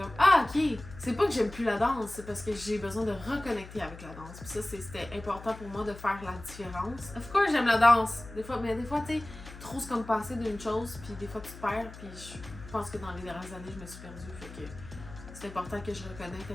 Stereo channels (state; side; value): noise; left; hum, 15 dB below the sound